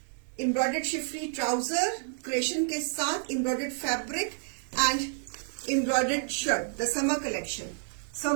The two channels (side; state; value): left; silent; digital silence